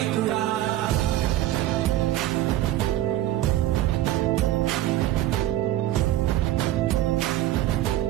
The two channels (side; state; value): left; quieter; 14.0 dB